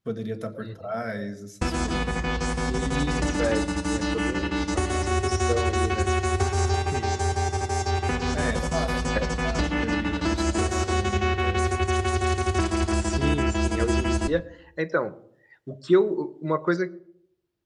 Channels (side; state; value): both; identical; correlation 1.00